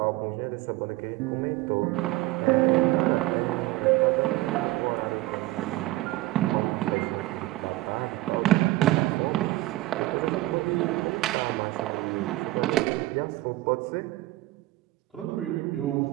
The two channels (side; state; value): left; quieter; 18.1 dB